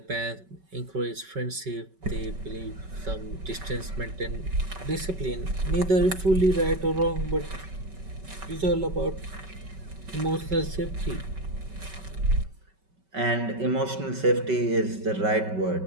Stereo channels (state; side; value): late; left; 5.3 ms